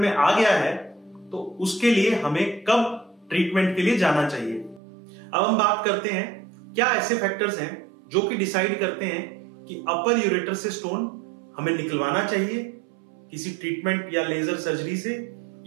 आ गया है तो उसके लिए हमें कब ट्रीटमेंट के लिए जाना चाहिए। अब हम बात करते हैं क्या ऐसे फैक्टर्स हैं जो कि डिसाइड करते हैं कि अपर यूरेटर से स्टोन हमें निकलवाना चाहिए किसी ट्रीटमेंट या लेजर सर्जरी से,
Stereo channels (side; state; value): left; drops out; at 4.8 s